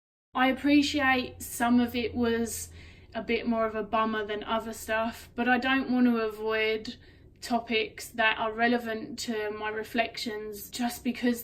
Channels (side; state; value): both; identical; correlation 1.00